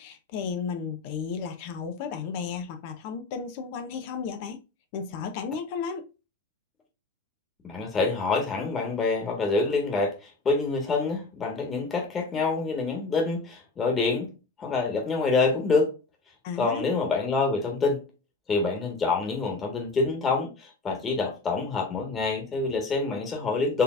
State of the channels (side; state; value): right; quieter; 3.6 dB